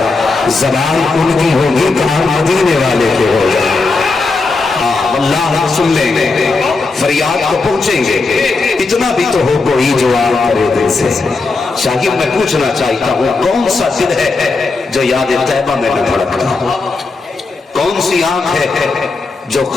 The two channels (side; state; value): right; quieter; 3.8 dB